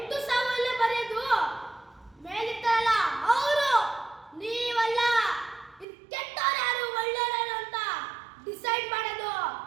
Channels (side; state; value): left; drops out; at 5.9 s